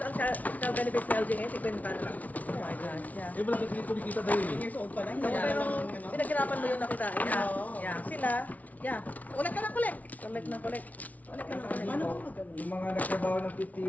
ang child benefits na LG ngayon, 50 na lang. Oh my gosh, yeah. Eh malaki kumikita dahil eh. Years old pa lang. So, pero pinaghirapan mo yung nakitain. Yeah. Yeah. Sila, Yeah. Ulit ka na kulit. collect ng collect. Paano ba magano? Yung mga nagtrabaho ng 50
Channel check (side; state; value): right; late; 0.072 ms